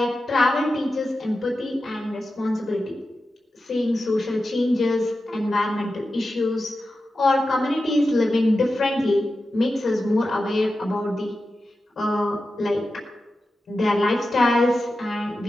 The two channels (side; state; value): both; normal; correlation 0.92